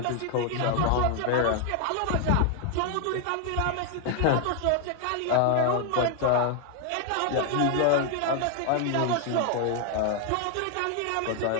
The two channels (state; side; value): different; both; correlation 0.00